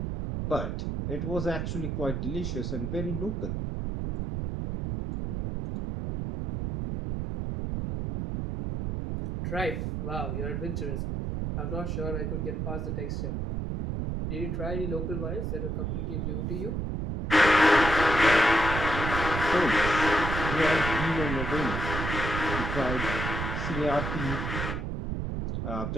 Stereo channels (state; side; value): noise; right; rumble, 2 dB below the sound